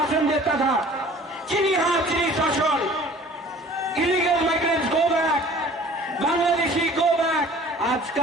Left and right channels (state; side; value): normal; both; correlation 0.48